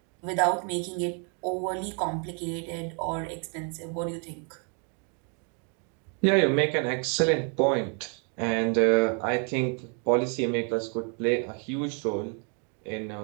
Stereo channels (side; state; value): left; quieter; 39.5 dB